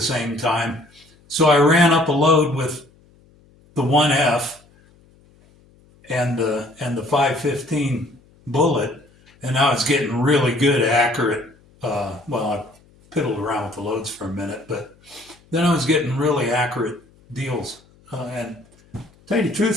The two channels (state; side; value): noise; left; hum, 30 dB below the sound